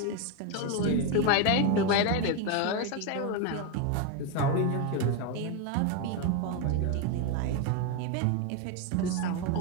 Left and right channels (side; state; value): both; different; correlation 0.02